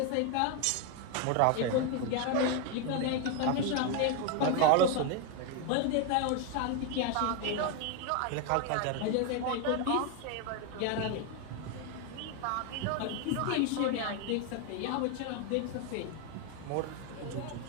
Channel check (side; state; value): both; different; correlation 0.01